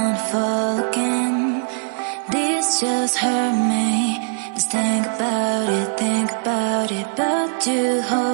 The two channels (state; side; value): silent; left; digital silence